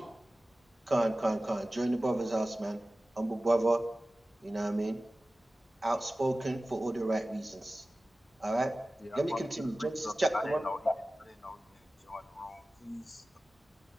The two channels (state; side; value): normal; both; correlation 0.96